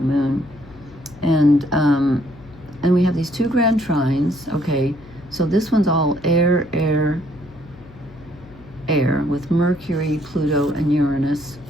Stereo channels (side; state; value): left; noise; hum, 21 dB below the sound